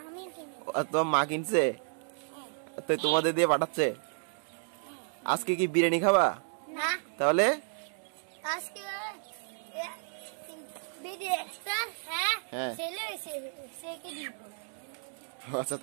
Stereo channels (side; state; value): left; silent; 56 dB below the other